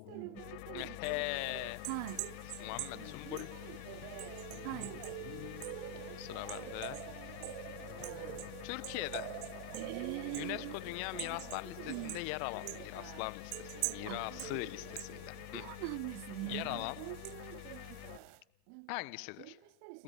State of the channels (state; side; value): different; both; correlation 0.01